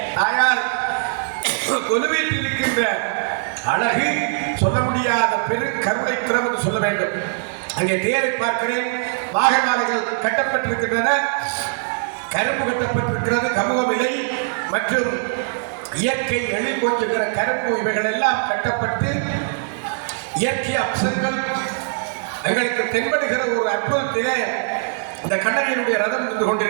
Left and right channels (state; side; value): silent; left; digital silence